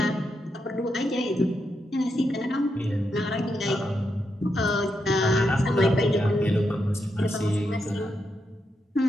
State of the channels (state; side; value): normal; both; correlation 0.83